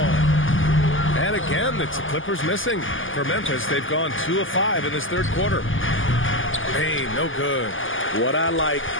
And again, it's the Clippers missing. For Memphis, they've gone 2 of 5 in this third quarter. Hey, no good. What I like,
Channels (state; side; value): late; right; 0.58 ms